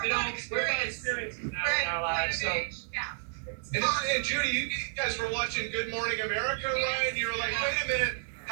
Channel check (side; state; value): left; silent; digital silence